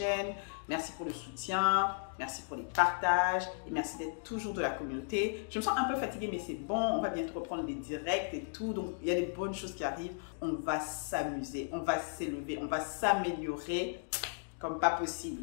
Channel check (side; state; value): right; silent; digital silence